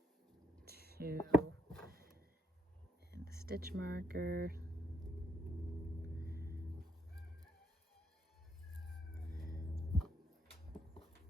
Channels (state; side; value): normal; both; correlation 0.75